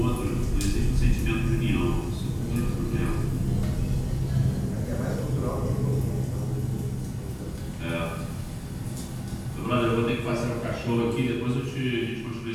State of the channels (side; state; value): both; identical; correlation 1.00